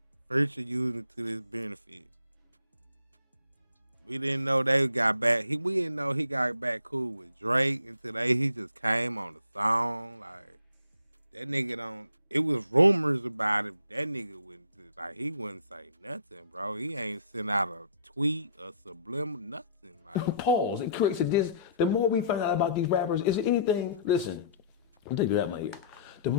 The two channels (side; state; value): both; inverted; correlation -0.58